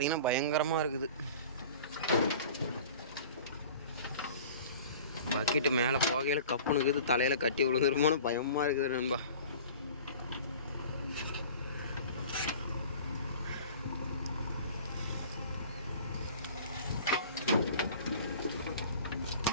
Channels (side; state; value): both; inverted; correlation -0.43